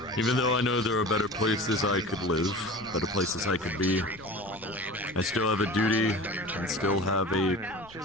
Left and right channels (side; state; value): left; noise; rumble, 24 dB below the sound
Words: right. Even though I know there are better places I could live, better places I could be, I still have a duty and still have a